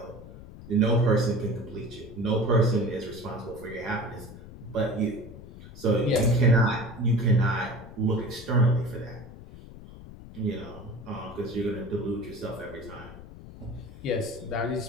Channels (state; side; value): noise; left; rumble, 16 dB below the sound